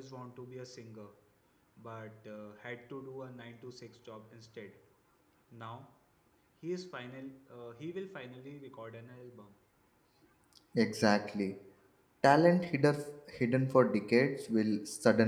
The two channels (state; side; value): identical; both; correlation 1.00